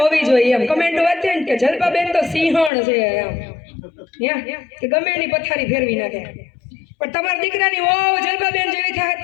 હોવી જોઈએ એમ કમેન્ટ વાંચે ને કે જલપાબેન તો સિંહણ છે એમ કે ગમે એની પથારી ફેરવી નાખે. પણ તમારા દીકરાની ઓ જલપાબેન જેવી થાય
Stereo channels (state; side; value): drops out; right; at 2.7 s